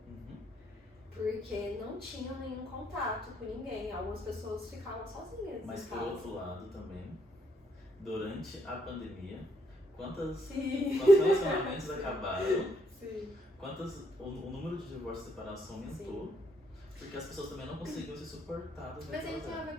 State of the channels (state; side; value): normal; both; correlation 0.73